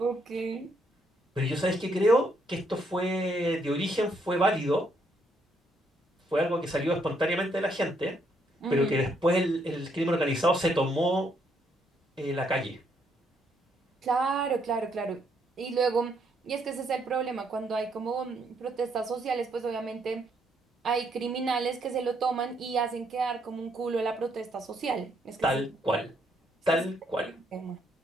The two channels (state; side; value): normal; both; correlation 0.73